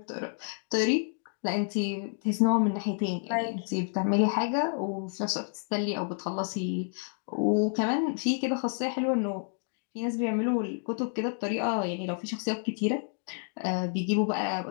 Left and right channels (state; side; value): silent; right; 58 dB below the other